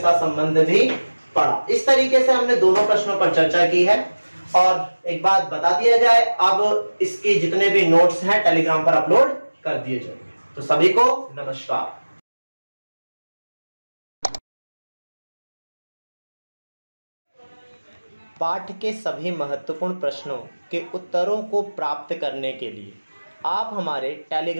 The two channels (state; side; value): inverted; both; correlation -1.00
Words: संबंध भी पढ़ा। इस तरीके से हमने दोनों प्रश्नों पर चर्चा की है। और एक बात बता दिया जाए, अब इसके जितने भी नोट्स हैं टेलीग्राम पर अपलोड कर दिए जाएंगे। तो सभी को नमस्कार। पाठ के सभी महत्वपूर्ण प्रश्नों के उत्तरों को प्राप्त करने के लिए आप हमारे